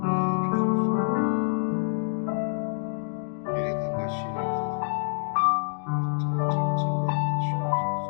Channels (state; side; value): silent; right; digital silence